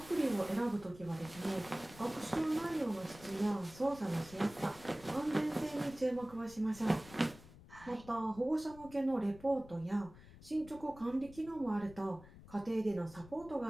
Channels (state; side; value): noise; left; rumble, 19 dB below the sound